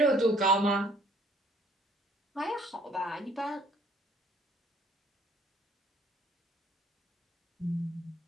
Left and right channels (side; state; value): both; normal; correlation 0.60